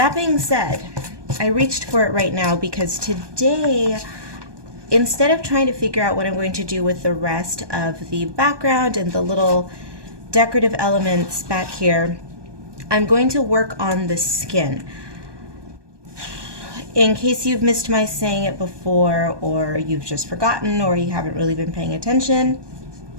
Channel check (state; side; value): late; left; 1.2 ms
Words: being said, I reached for it right now because today, instead of trying to figure out what I'm going to do with the rest of the background and the little decorative elements back here, I'm going to work on the skin. In case you've missed my saying it before, or you've just forgotten, or you haven't really been paying attention,